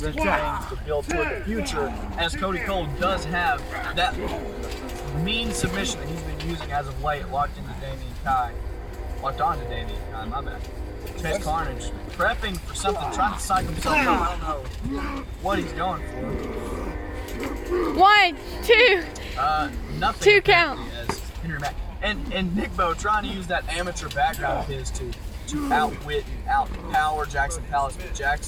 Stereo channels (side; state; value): both; identical; correlation 1.00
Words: things to build toward the future, as Cody Cole does have that mean submission that he's been using as of late, locked onto Damian Kai, my bad. Chase Carnage, prepping for something, trying to psych himself up. I don't know what he's going for. 1, 2. Nothing. 2 count. As Henry Mack and Nick Bo trying to use that amateur background of his to outwit and outpower Jackson Palace, but